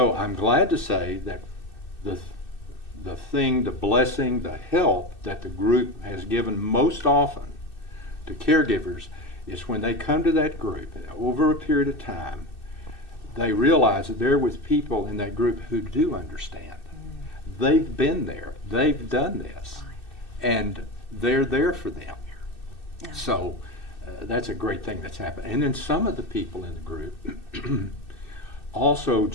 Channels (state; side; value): late; right; 2.6 ms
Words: I'm glad to say that the blessing, the help that the group has given most often to caregivers is when they come to that group, over a period of time, they realize that they're with people in that group who do understand. They've been there, they've done this, and they're there for them. Yeah. So that's a great thing that's happened. And then some of the people in the group also